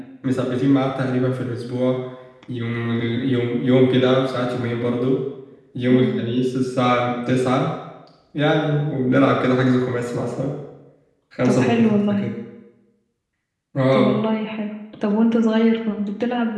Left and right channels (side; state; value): both; identical; correlation 1.00